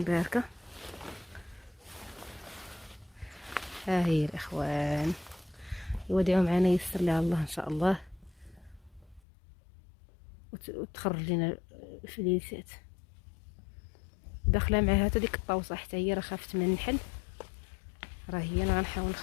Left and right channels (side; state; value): right; drops out; at 9.2 s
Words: باركه، ها هي الاخوان. يودعوا معنا، يسر لها الله ان شاء الله وتخرج لنا فليسات. داخله معها حتى ديك الطاوسه حتى هي، راه خافت من النحل. راه هي انا غنحاول